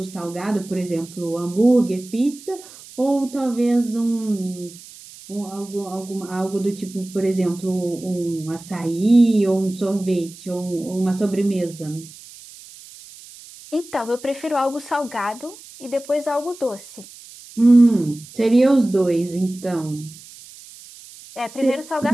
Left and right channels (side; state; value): right; noise; hiss, 19 dB below the sound